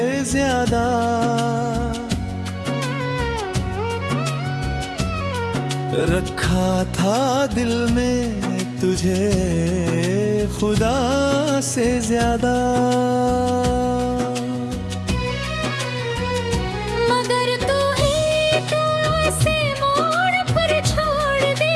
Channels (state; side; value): identical; both; correlation 1.00